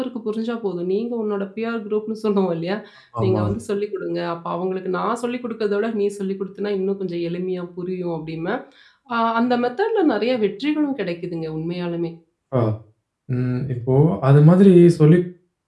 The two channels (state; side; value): identical; both; correlation 1.00